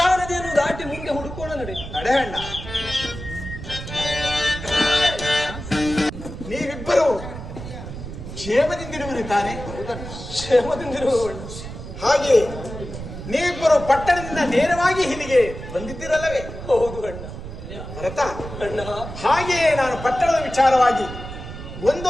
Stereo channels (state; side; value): noise; right; rumble, 10 dB below the sound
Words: ನದಿಯನ್ನು ದಾಟಿ ಮುಂದೆ ಹುಡುಕೋಣ, ನಡೆಯಣ್ಣ. ನೀವಿಬ್ಬರು ಕ್ಷೇಮದಿಂದಿರುವಿರಿ ತಾನೆ? ಕ್ಷೇಮದಿಂದಿರುವವಳು. ಹಾಗೆ ನೀವಿಬ್ಬರು ಪಟ್ಟಣದಿಂದ ನೇರವಾಗಿ ಇಲ್ಲಿಗೆ ಬಂದಿದ್ದಿರಲ್ಲವೇ? ಹೌದು ಅಣ್ಣ. ಭರತ, ಅಣ್ಣ, ಹಾಗೆಯೇ ನಾನು ಪಟ್ಟಣದ ವಿಚಾರವಾಗಿ